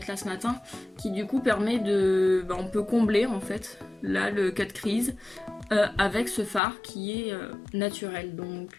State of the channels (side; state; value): right; drops out; at 6.6 s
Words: là ce matin, qui du coup permet de... on peut combler en fait, là le cut crease, avec ce fard qui est naturel. Donc